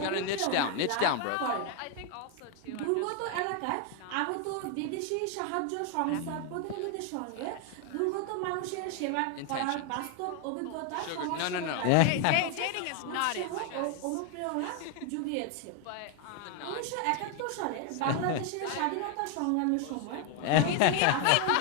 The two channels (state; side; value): different; both; correlation 0.01